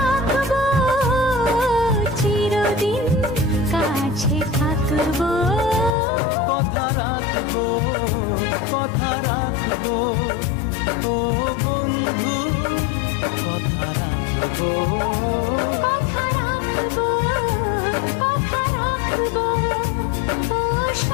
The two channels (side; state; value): right; drops out; at 5.9 s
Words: চিরদিন কাছে থাকবো। কথা রাখবো, কথা রাখবো, ও বন্ধু কথা রাখবো। কথা রাখবো, কথা রাখবো, ও